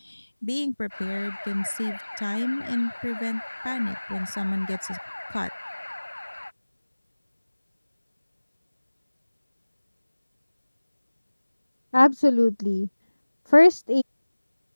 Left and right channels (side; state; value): both; inverted; correlation -1.00